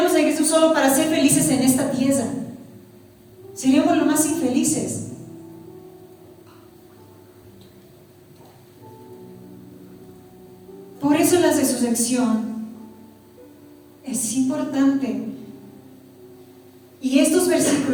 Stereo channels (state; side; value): identical; both; correlation 1.00